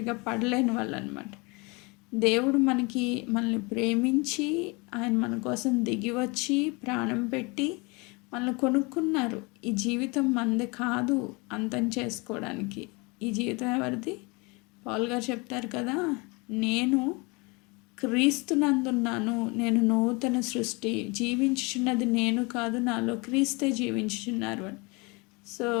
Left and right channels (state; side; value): quieter; right; 27.8 dB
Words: పడలేని వాళ్ళు అనమాట. దేవుడు మనల్ని ప్రేమించి ఆయన మన కోసం దిగి వచ్చి ప్రాణం పెట్టి మనల్ని కొనుక్కున్నారు. ఈ జీవితం మనది కాదు అంతం చేసుకోవడానికి. ఈ జీవితం ఎవరిది? పౌలు గారు చెప్తారు కదా, నేను క్రీస్తునందున్నాను, నేను నూతన సృష్టి, జీవించుచున్నది నేను కాదు, నాలో క్రీస్తే జీవించుచున్నారు అని. సో